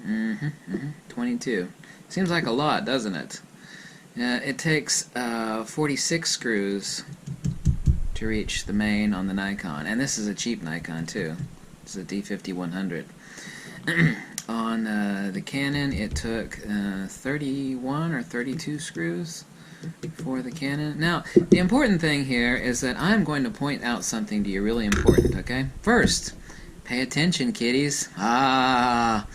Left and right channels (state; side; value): identical; both; correlation 1.00